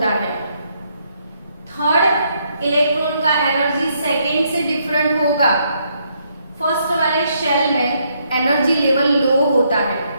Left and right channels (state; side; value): inverted; both; correlation -0.74